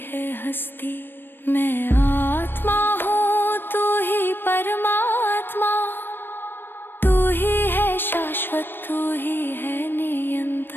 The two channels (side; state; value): right; late; 0.097 ms